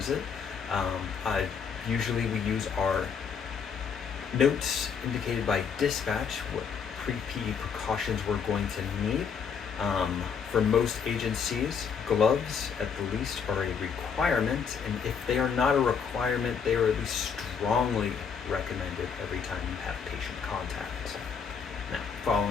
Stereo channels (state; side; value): quieter; right; 6.5 dB